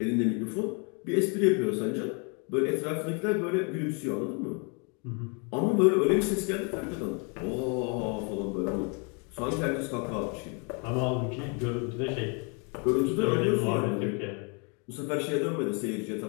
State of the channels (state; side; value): quieter; right; 35.3 dB